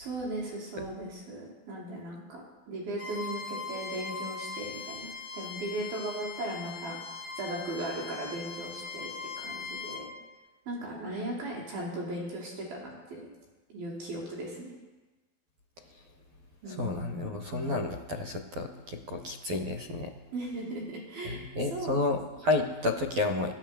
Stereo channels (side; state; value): left; late; 12 ms